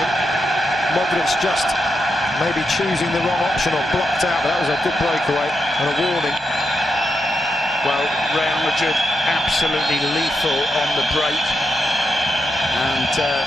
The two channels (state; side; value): normal; both; correlation 0.85